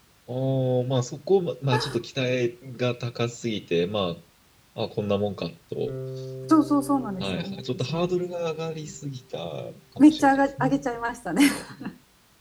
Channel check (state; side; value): identical; both; correlation 1.00